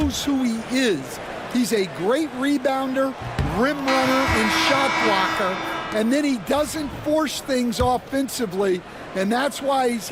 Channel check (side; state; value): both; identical; correlation 1.00